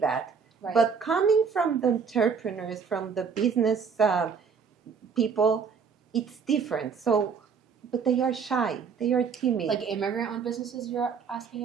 Right. But coming from the entrepreneurs, from the business people, it's different. So, but they are shy, they are timid. Like immigrant-owned businesses you're asking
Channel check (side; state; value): left; quieter; 6.1 dB